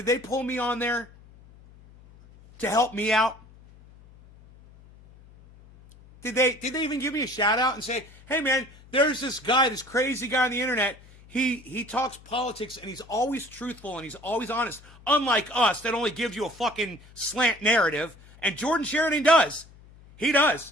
they pull me on there to help me out? Did they even give me a shout out and say, hey man, there's this guy, this crazy guy on the internet. He talks politics and he's always truthful and he's always honest. Unlike us that only gives you a fucking slant narrative. And Jordan Sheridan does. He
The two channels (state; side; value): noise; left; hum, 23 dB below the sound